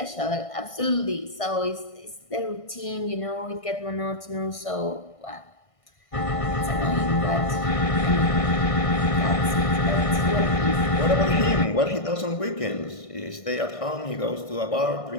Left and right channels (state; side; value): late; right; 1.6 ms